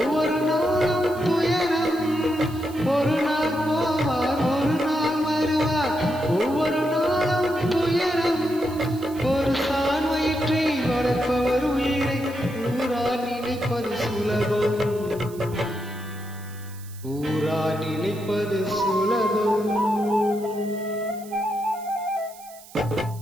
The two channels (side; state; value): right; noise; hiss, 20 dB below the sound